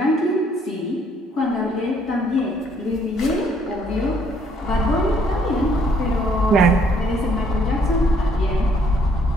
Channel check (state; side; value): normal; both; correlation 0.66